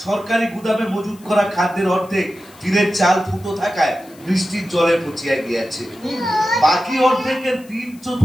সরকারি গুদামে মজুত করা খাদ্যের অর্ধেক টিনের চাল ফুটো থাকায় বৃষ্টির জলে পচিয়া গিয়াছে। বাকি অর্ধেকের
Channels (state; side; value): noise; left; hiss, 25 dB below the sound